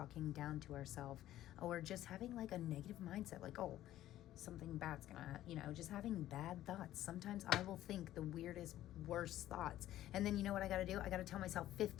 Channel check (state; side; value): quieter; right; 13.6 dB